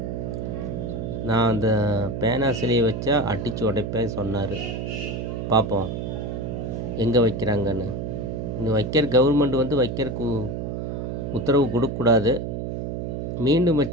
நான் அந்த பேனா சிலையை வச்சா அடித்து உடைப்பேன் சொன்னார். பார்ப்போம் எங்கே வைக்கிறாங்கன்னு. இன்னும் வைக்கிற கவர்மெண்ட் வந்து வைக்கிறதுக்கு உத்தரவு கொடுக்கக்கூடாது. மீண்டும்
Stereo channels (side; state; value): right; noise; hum, 4 dB below the sound